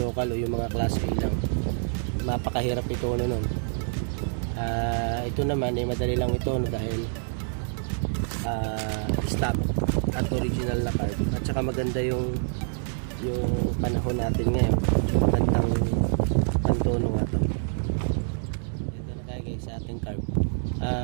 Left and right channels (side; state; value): left; silent; digital silence